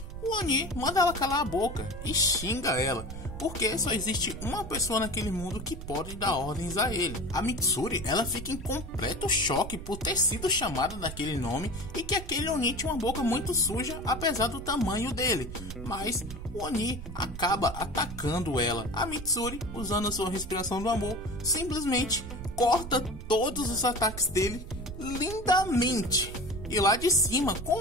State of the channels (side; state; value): right; noise; rumble, 10 dB below the sound